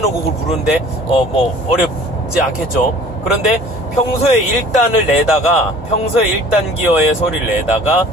부르는데 뭐 어렵지 않겠죠. 그런데 평소에 1단을 내다가, 평소에 1단 기어의 소리를 내다가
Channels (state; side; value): normal; both; correlation 0.48